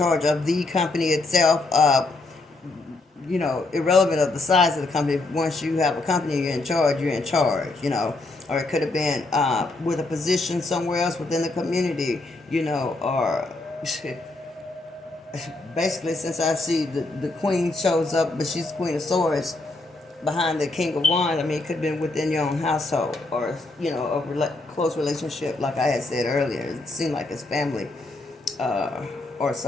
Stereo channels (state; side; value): quieter; right; 3.1 dB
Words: of the company itself. Irrelevant of the size of the company. Once you have a company, you're in charge. You're in charge. Or it could have been with a position somewhere else within the community. Or basically, since I see the Queen shows up, but she's Queen of Swords behind the King of Wands. I mean, it could have been within your own household, or close relationship, like I had said earlier. It seemed like it's family, or